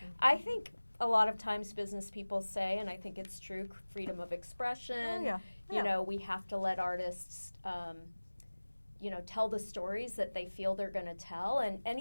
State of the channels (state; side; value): inverted; both; correlation -1.00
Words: I think a lot of times business people say, and I think it's true, freedom of expression. We have to let artists, tell the stories that they feel they're going to tell. And